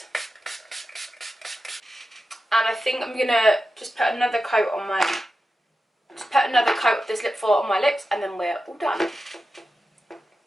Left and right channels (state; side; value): normal; both; correlation 0.91